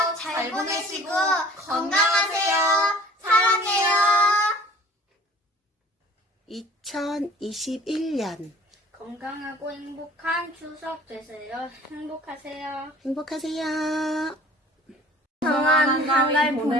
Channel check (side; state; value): both; normal; correlation 0.49